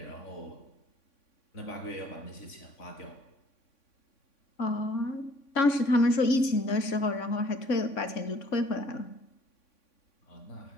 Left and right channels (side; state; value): right; late; 3.6 ms